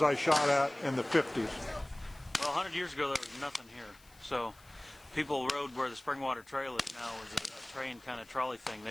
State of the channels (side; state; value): left; noise; hiss, 26 dB below the sound